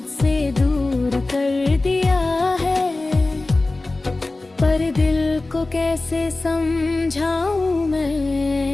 से दूर कर दिया है। पर दिल को कैसे समझाऊं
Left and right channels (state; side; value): quieter; right; 3.1 dB